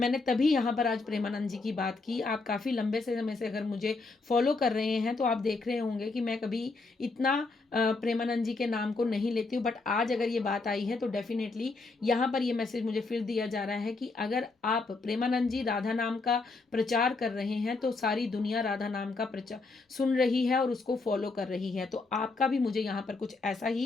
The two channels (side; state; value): right; quieter; 3.7 dB